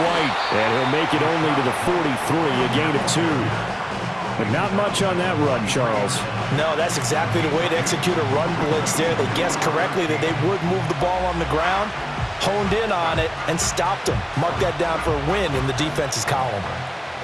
And he'll make it only to the 43, a gain of 2. But not much on that run, Charles. No, that's exactly the way to execute a run blitz there. They guessed correctly that they would move the ball on the ground, honed in on it, and stopped them. Mark that down for a win in the defense's column.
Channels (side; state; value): both; identical; correlation 1.00